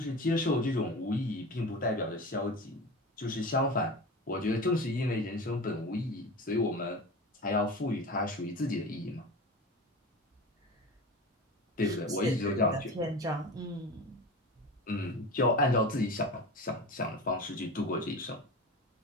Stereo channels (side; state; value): both; normal; correlation 0.31